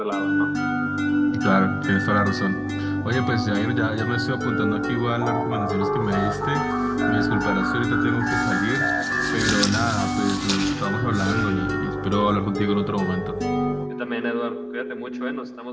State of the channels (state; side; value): identical; both; correlation 1.00